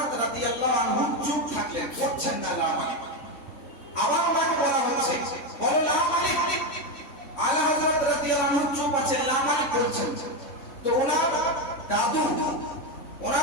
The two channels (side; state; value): right; late; 3.5 ms